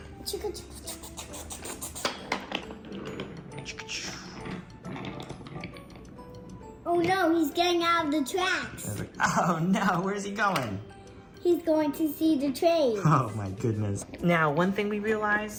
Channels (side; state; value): both; identical; correlation 1.00